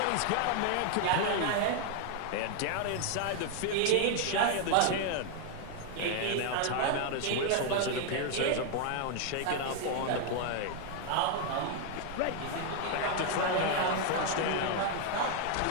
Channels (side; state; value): both; different; correlation 0.00